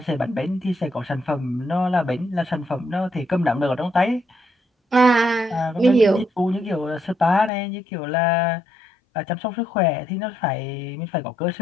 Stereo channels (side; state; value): right; drops out; at 7.5 s